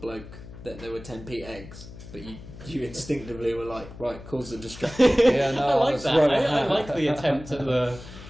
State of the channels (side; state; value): left; noise; hum, 15 dB below the sound